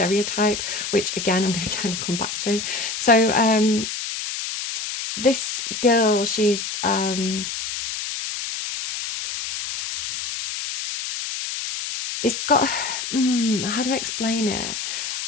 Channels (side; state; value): left; noise; hiss, 5 dB below the sound